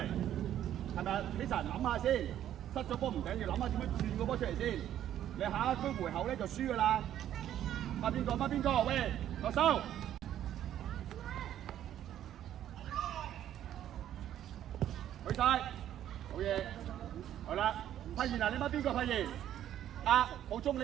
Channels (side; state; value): left; quieter; 11.3 dB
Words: 係咪啊？希神諗下先，失咗波唔緊要，諗下點樣轉個波出嚟先。你下一區回後咧就輸噶啦。孖邊個？孖邊個？喂，落手。去晒，好嘢，好啦，發現啊，你孖邊個發現？啊，浩中你